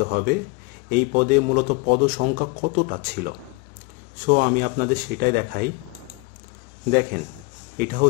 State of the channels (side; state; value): right; quieter; 27.0 dB